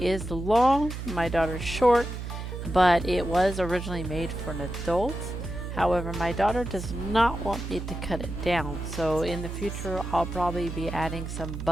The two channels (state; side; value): noise; right; hum, 7 dB below the sound